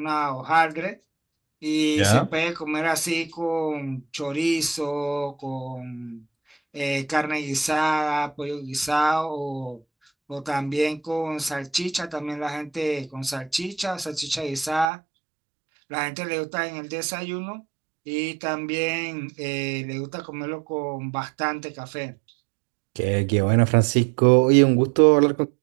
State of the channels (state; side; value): drops out; left; at 14.9 s